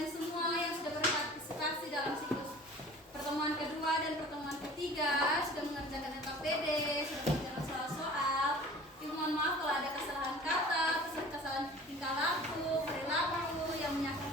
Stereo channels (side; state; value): both; normal; correlation 0.44